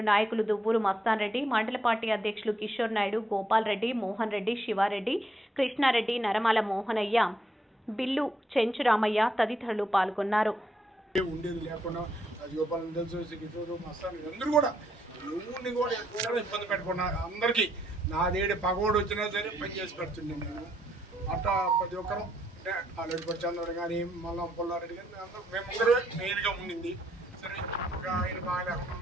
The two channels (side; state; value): both; normal; correlation 0.75